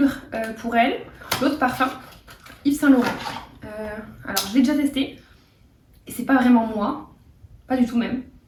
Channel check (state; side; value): identical; both; correlation 1.00